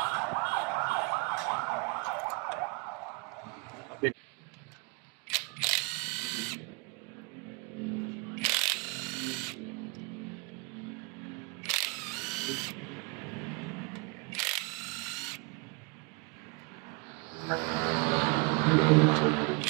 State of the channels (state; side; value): quieter; left; 29.7 dB